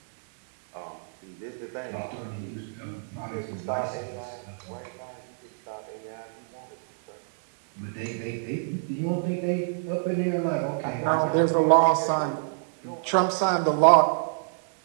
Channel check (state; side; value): silent; left; digital silence